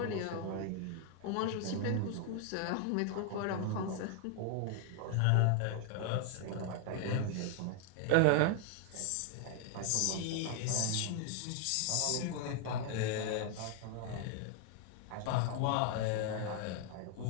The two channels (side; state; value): both; different; correlation 0.00